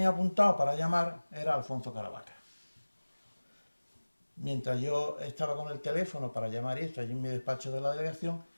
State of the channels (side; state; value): both; inverted; correlation -1.00